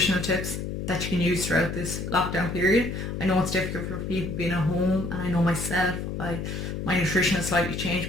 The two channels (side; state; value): left; noise; hum, 4 dB below the sound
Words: tips that you can use throughout this lockdown period. I know it's difficult for people being at home, and I know myself, my nutrition has slightly changed